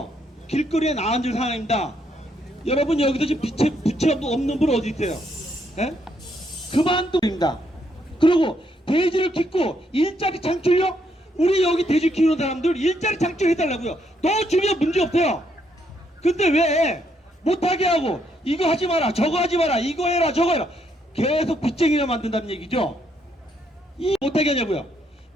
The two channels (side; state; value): both; normal; correlation 0.74